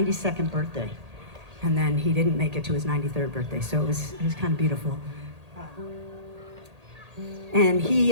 birthday. And then he didn't make it to his 93rd birthday, so it was kind of beautiful. And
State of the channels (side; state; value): left; late; 1.8 ms